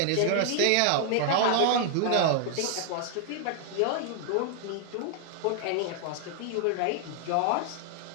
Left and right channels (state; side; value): different; both; correlation 0.00